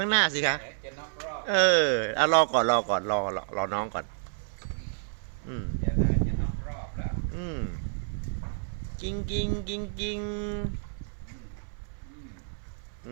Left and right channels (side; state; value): left; silent; 58 dB below the other